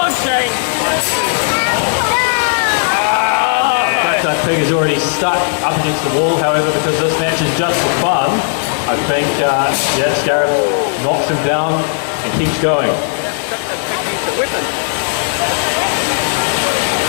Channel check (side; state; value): right; silent; digital silence